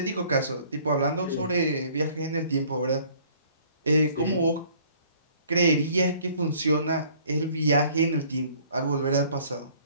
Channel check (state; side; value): inverted; both; correlation -0.56